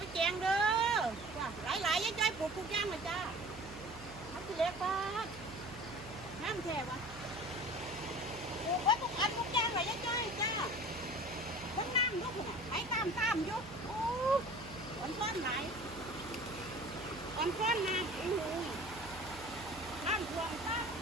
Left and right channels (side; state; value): right; noise; hum, 17 dB below the sound